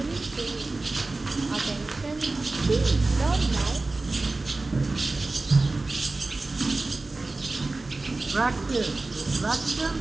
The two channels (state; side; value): quieter; left; 3.3 dB